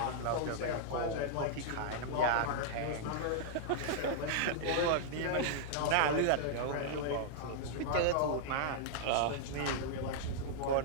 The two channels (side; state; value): both; different; correlation -0.01